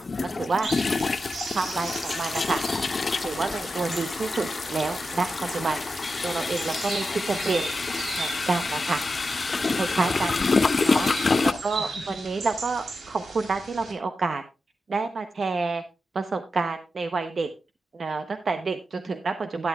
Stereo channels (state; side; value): normal; both; correlation 0.89